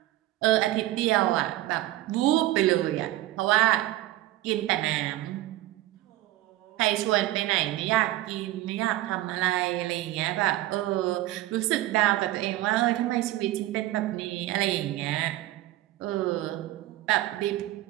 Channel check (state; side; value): quieter; left; 15.8 dB